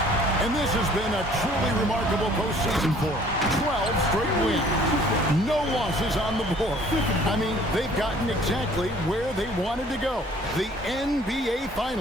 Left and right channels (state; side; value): normal; both; correlation 0.55